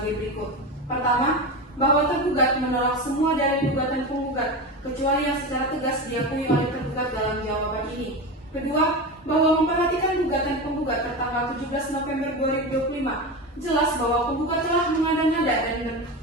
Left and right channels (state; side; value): normal; both; correlation 0.22